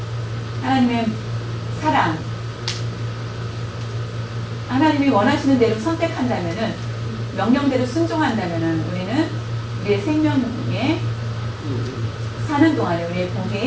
하나님의 사랑, 하나님이 원하시는 대로 선택한다면 명령대로 순종한다면 우리는 우리의 생명에 사는 동안에 우리의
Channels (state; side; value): identical; both; correlation 1.00